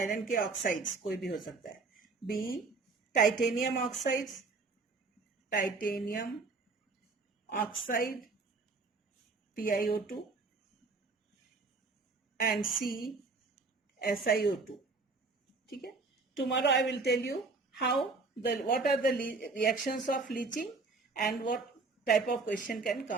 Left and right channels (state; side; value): quieter; left; 4.0 dB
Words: के ऑक्साइड्स कोई भी हो सकता है. B titanium oxides, titanium oxide TiO2, and C SiO2. ठीक है. Tomorrow I will tell you what are the reactions of leaching and what type of question can